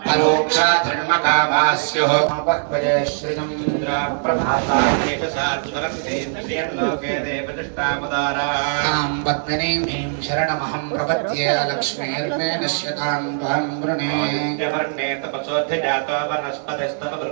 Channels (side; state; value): left; silent; digital silence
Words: परोक्षा धर्मकामा स्युः भक्वये श्रीचन्द्रा प्रभातान्येष सात्वरं लोके देवदृष्टामुदारां पद्मिनीं शरणमहं प्रपद्ये लक्ष्मीर्मे नश्यतां त्वां वृणे वर्णे तपसोऽधिजातो वनस्पतिस्तव